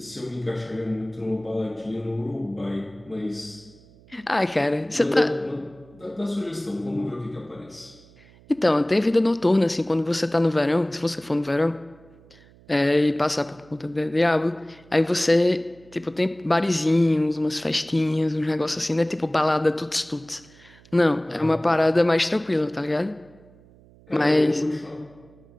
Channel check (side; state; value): right; noise; hum, 26 dB below the sound